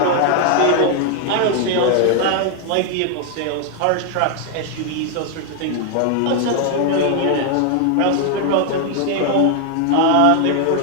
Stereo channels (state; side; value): different; both; correlation 0.00